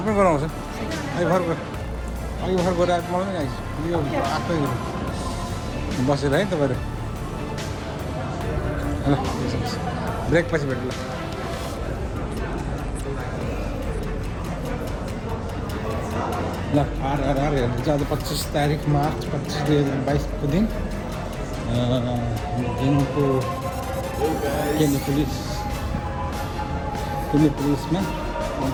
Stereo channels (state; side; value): identical; both; correlation 1.00